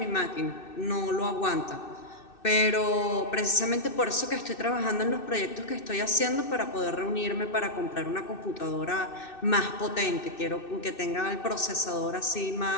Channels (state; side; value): late; right; 2.6 ms